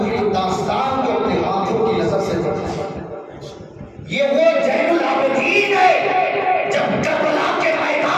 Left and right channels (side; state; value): both; identical; correlation 1.00